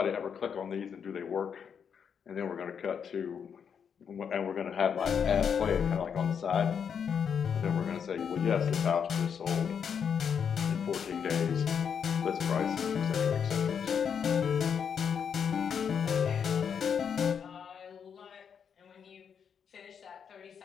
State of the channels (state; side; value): quieter; right; 7.2 dB